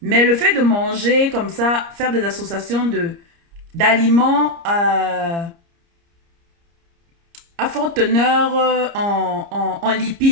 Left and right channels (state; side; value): late; left; 30 ms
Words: Mais le fait de manger comme ça, faire des associations d'aliments à forte teneur en